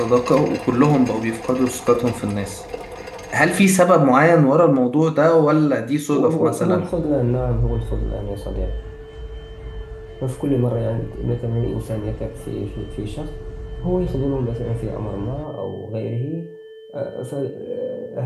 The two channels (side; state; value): both; identical; correlation 1.00